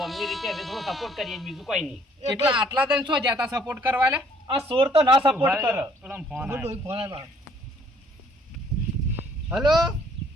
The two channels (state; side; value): normal; both; correlation 0.61